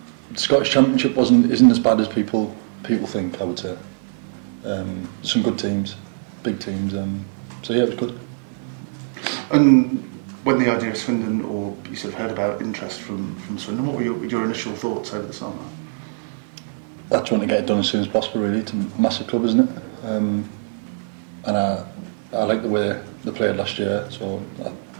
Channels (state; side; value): silent; left; 64 dB below the other